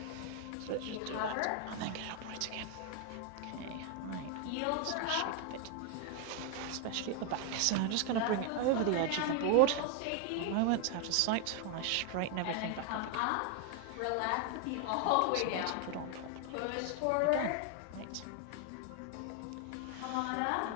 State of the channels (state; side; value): different; both; correlation 0.01